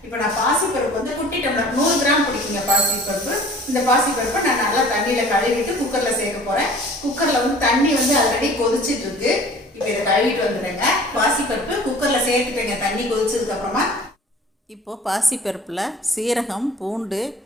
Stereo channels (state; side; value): normal; both; correlation 0.47